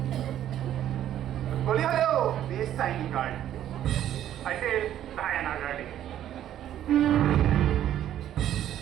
গলি হ'লেও বেষ্ট চাইনিং গাৰ্ড I said Diana darling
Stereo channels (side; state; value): left; quieter; 11.4 dB